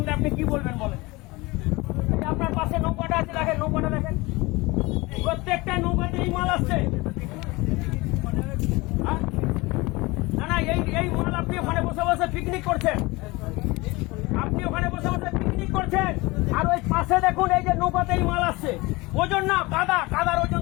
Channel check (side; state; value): right; quieter; 22.9 dB